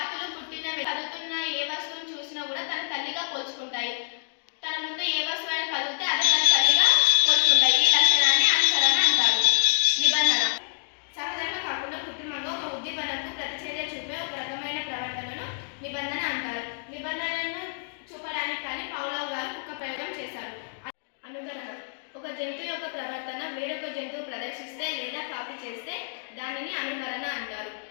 పుట్టిన కదులుతున్న ఏ వస్తువును చూసినా కూడా తన తల్లిగా పోల్చుకుంటాయి. తన ముందు ఏ వస్తువైనా కదిలితే అదే తన తల్లిగా పోల్చుకుంటాయి. ఈ లక్షణాన్ని అనుసరణ అంటారు. నిబంధన సహజంగా కాకుండా కృత్రిమంగా ఒక ఉద్దీపనకు ప్రతిచర్య చూపే ఒక రకమైన ప్రవర్తనను నిబంధన అంటారు. నిబంధనను చూపడానికి కానీ పౌలవ్ గారు కుక్క ప్రయోగం చేశారు. అనుకరణ ఒక జంతువు యొక్క ప్రవర్తన వేరొక జంతువు ప్రదర్శిస్తే లేదా కాపీ చేస్తే దానిని అనుకరణ అంటారు.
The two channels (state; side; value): silent; right; digital silence